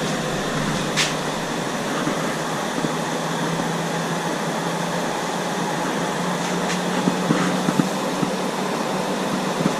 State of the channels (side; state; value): both; identical; correlation 1.00